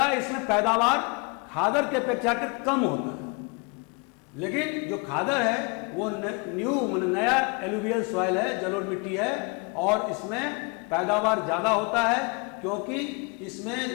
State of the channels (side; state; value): right; quieter; 32.2 dB